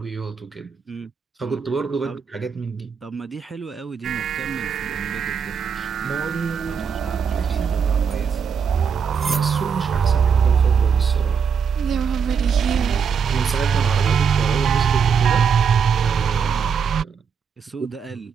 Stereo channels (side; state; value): left; quieter; 6.5 dB